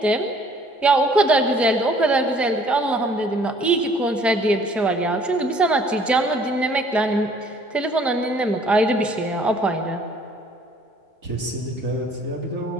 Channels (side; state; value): both; normal; correlation 0.58